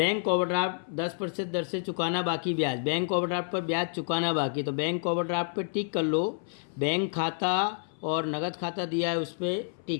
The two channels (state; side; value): silent; right; 59 dB below the other